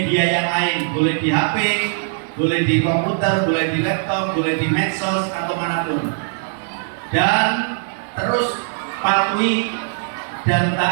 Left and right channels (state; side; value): silent; left; digital silence